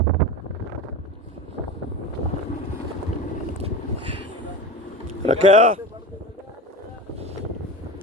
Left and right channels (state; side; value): normal; both; correlation 0.28